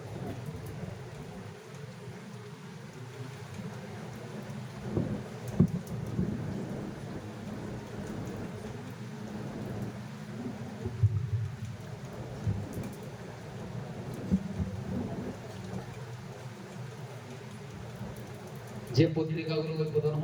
যে পত্রিকাগুলো উদ্বোধন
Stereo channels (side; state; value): both; identical; correlation 1.00